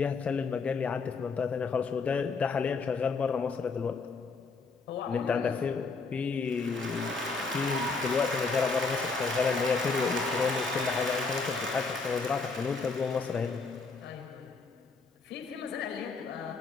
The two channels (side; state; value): right; quieter; 4.4 dB